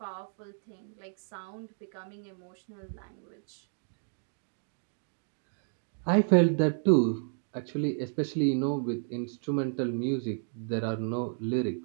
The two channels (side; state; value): left; silent; digital silence